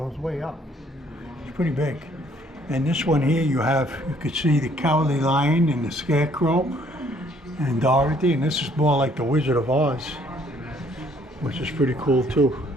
way up. It's pretty big. And this one here, you could see the Cowardly Lion and the Scarecrow and Dorothy, and this is more like the Wizard of Oz, which is pretty cool too.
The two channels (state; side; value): normal; both; correlation 0.63